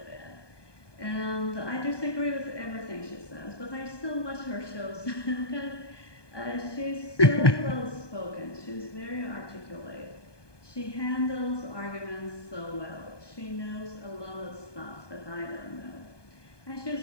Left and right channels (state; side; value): late; right; 1.2 ms